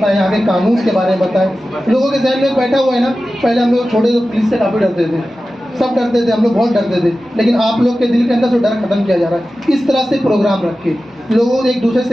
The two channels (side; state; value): both; normal; correlation 0.94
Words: यहाँ के कानून के बारे में बताएं। लोगों के जहन में बैठा हुआ है ना, पहले हम लोग छोटे तो पुलिस से काफी डरते थे, सब डरते थे, हम लोग बहुत डरते थे, लेकिन आप लोग के दिल के अंदर से डर खत्म किया जा रहा है। इस तरह से प्रोग्राम रखे, लोगों को एक दूसरे